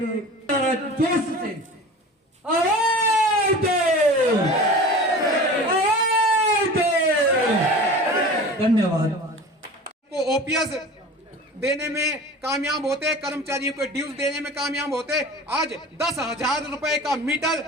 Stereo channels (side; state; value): both; normal; correlation 0.37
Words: जोश से आवाज दो, धन्यवाद। को ओपीएस देने में कामयाब होते, कर्मचारियों को ड्यूज देने में कामयाब होते। आज 10,000 रुपए का मीटर